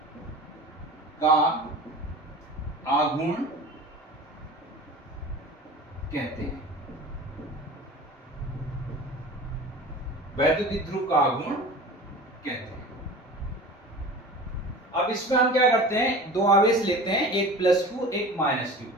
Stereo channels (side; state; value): both; normal; correlation 0.37